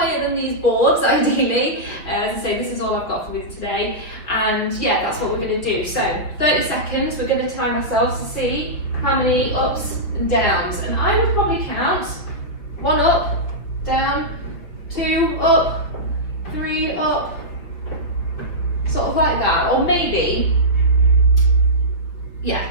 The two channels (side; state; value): right; late; 5.4 ms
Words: than these boards, ideally. As I say, this is all I've got for you today. And yeah, that's what we're going to do. So 30 seconds, we're going to time ourselves to see how many ups and downs. And I would probably count 1 up, down, 2 up, 3 up, sort of like that. Or maybe, yeah,